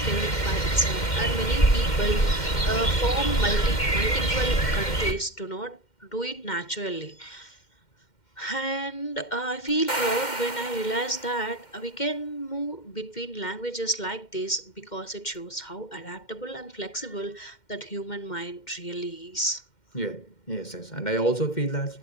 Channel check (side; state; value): right; late; 2.1 ms